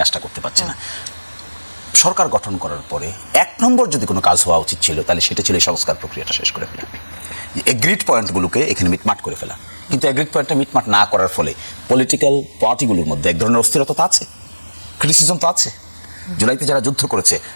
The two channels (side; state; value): both; inverted; correlation -1.00